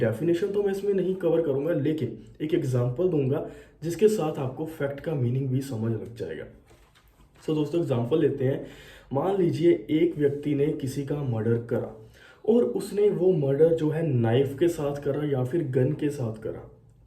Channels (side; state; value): both; identical; correlation 1.00